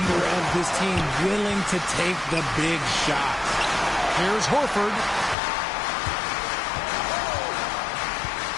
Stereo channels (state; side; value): drops out; right; at 5.4 s